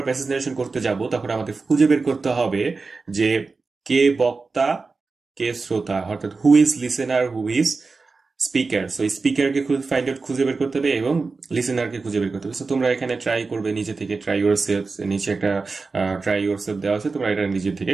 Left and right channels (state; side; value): quieter; left; 4.1 dB